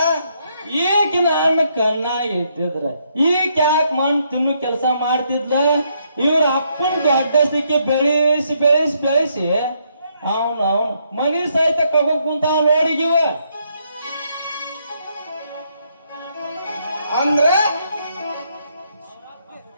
ಈಗ ನನ್ನ ಕಣ್ಣಾಗ ಇಟ್ಟಿದ್ರ ಈಗ ಯಾಕೆ ಮಣ್ಣು ತಿನ್ನು ಕೆಲಸ ಮಾಡ್ತಿದ್ಲ? ಇವ್ರ ಅಪ್ಪನ ದೊಡ್ಡ ಸಿಕ್ಕಿ ಬೆಳೆಸಿ ಬೆಳೆಸಿ ಬೆಳೆಸಿ ಅವನು ಮನಿ ಸಹಿತ ಕಗೋಕ್ ಕುಂತ ನೋಡಿಗಿವ. ಅಂದ್ರೆ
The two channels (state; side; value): inverted; both; correlation -0.74